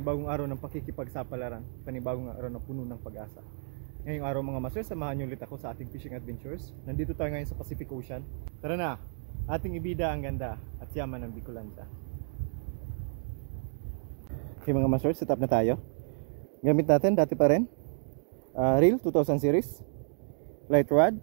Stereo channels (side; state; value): left; silent; digital silence